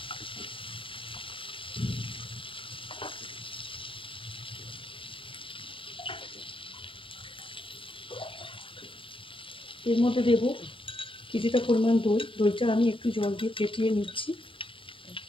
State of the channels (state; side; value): late; right; 0.25 ms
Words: এর মধ্যে দেব কিছুটা পরিমাণ দই। দইটা আমি একটু জল দিয়ে ফেটিয়ে নিচ্ছি।